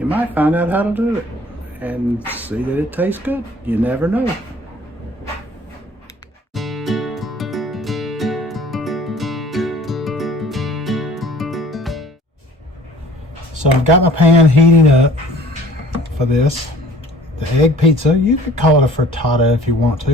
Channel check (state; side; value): normal; both; correlation 0.51